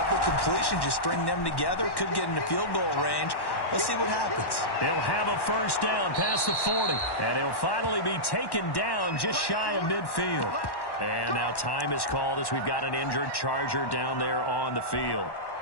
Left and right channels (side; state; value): right; late; 1.1 ms